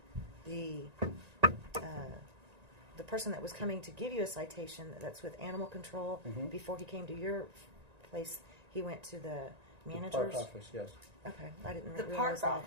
the person that was coming to give you a citation, that's with animal control, Mhm. before he came to your place, he went to the The manager's. park office, yes. Okay, I didn't The realize park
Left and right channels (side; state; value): left; late; 1.9 ms